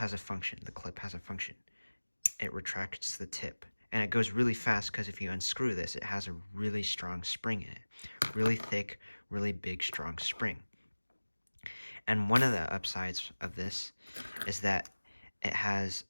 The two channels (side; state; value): both; inverted; correlation -1.00